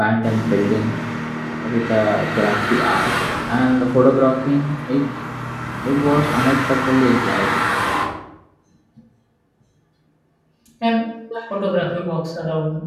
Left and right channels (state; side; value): identical; both; correlation 1.00